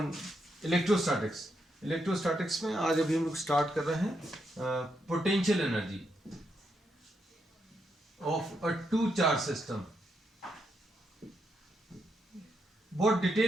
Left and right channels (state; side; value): normal; both; correlation 0.81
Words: electrostatics. Electrostatics में आज अभी हम लोग start कर रहे हैं potential energy of a two charge system. बहुत